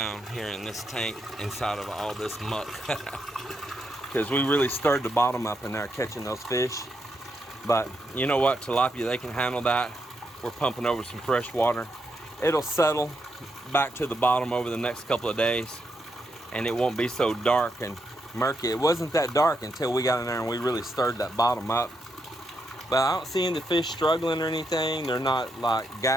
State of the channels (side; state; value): both; normal; correlation 0.81